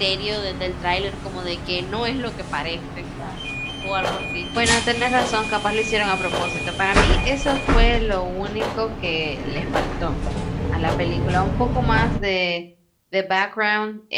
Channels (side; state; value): both; identical; correlation 1.00